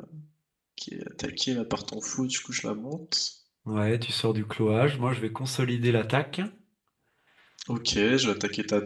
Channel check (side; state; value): both; identical; correlation 1.00